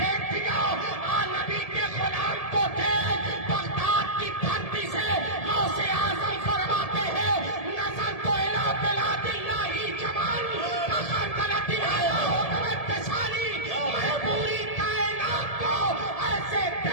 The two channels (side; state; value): right; late; 1.7 ms